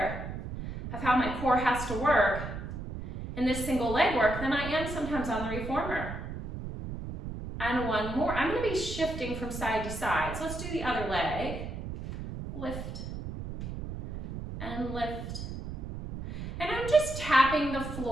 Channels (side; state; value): right; noise; rumble, 7 dB below the sound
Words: of how my core has to work in this single leg work than I am sometimes on the reformer. And 1 more. I'm gonna be shifting from side to side. So let's do the other leg. Lift and lift. And I'm just tapping the